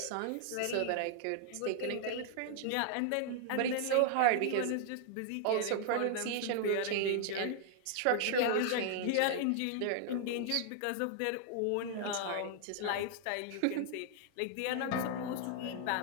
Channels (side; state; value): both; different; correlation 0.00